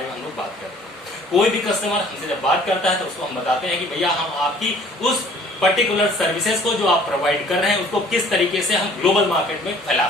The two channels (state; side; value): normal; both; correlation 0.54